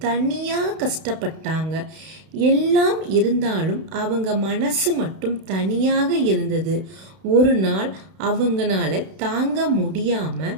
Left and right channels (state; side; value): late; left; 32 ms